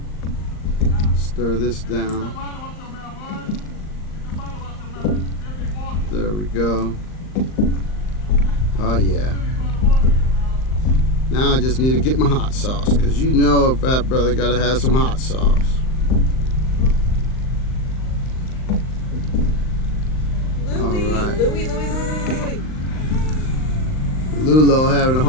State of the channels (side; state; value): right; late; 39 ms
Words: Stir this down. There we go. Oh yeah. Now I just need to get my hot sauce, because you know a fat brother gotta have some hot sauce. Louie. Lulo having a